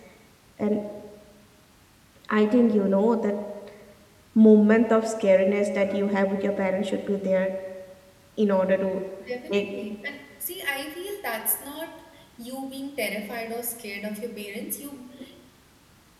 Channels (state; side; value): identical; both; correlation 1.00